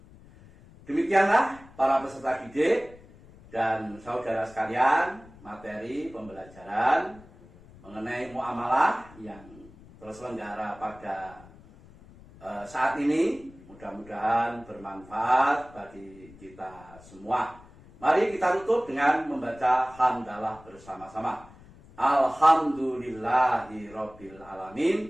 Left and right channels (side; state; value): left; noise; rumble, 22 dB below the sound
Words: Demikianlah para peserta didik dan saudara sekalian, materi pembelajaran mengenai muamalah yang terselenggara pada saat ini. Mudah-mudahan bermanfaat bagi kita semua. Mari kita tutup dengan membaca hamdalah bersama-sama. Alhamdulillahirabbil